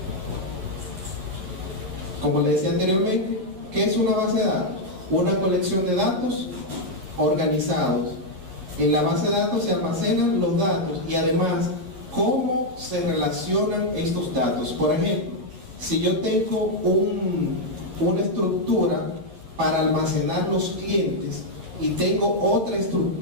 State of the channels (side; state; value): left; late; 11 ms